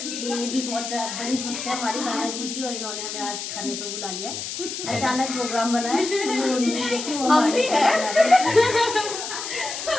ये भी बहुत बड़ी भक्त है हमारी कान्हा जी की, और इन्होंने हमें आज खाने पे बुला लिया है। अचानक प्रोग्राम बना है, हम भी है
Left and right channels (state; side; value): noise; left; hiss, 6 dB below the sound